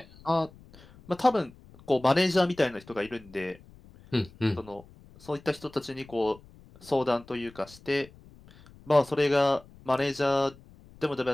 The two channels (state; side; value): noise; left; rumble, 23 dB below the sound